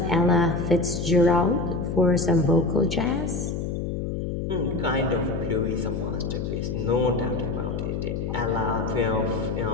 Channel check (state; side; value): noise; left; hum, 3 dB below the sound